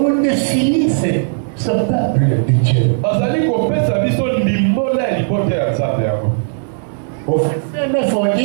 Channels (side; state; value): left; silent; digital silence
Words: nous définit ce peuple de Dieu. Au verset 9, on